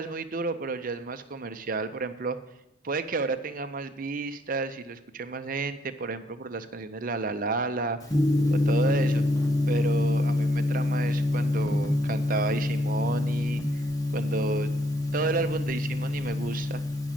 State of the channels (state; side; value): normal; both; correlation 0.68